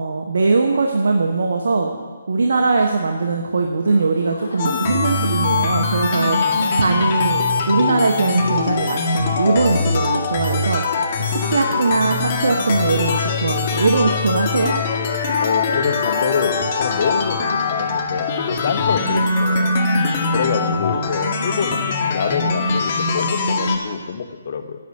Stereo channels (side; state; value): both; inverted; correlation -0.72